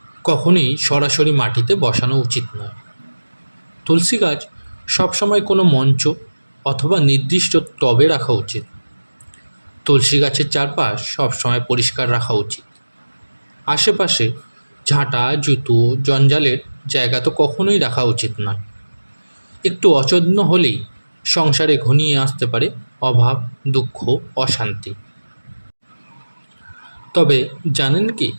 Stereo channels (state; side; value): inverted; both; correlation -1.00